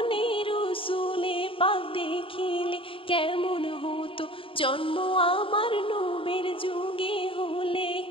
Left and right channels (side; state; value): right; late; 0.26 ms